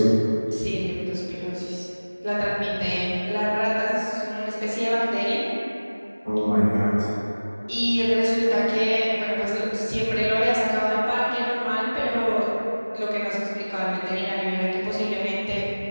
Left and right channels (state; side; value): inverted; both; correlation -1.00